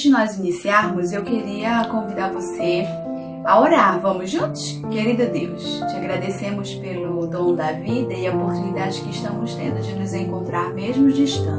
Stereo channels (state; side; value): identical; both; correlation 1.00